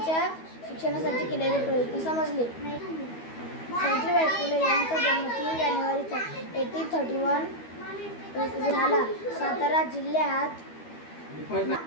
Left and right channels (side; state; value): right; late; 12 ms